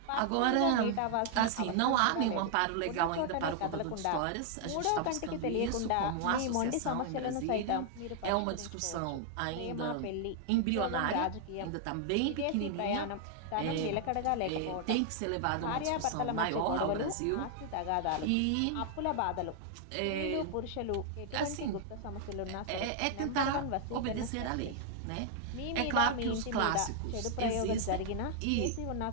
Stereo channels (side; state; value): both; different; correlation 0.00